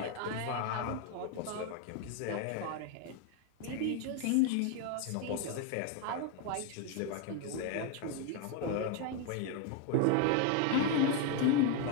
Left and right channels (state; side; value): different; both; correlation 0.01